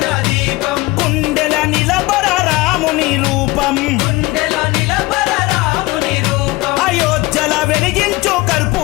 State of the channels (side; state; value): right; quieter; 21.0 dB